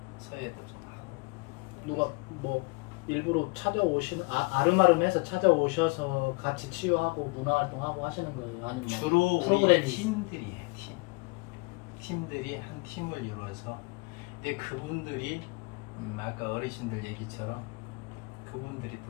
서예도 좀 하고. 누가 뭐 일부러 찾아오시는 아름아름해서 찾아오셔서 같이 치유하고 문화활동하고 하시는 거예요? 아니면 주로 프로그램이 우리 팀들이에요. 팀들이 한 팀을 이루어서. 근데 그분들이 아까 어르신들 얘기처럼 그분들이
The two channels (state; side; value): quieter; right; 28.7 dB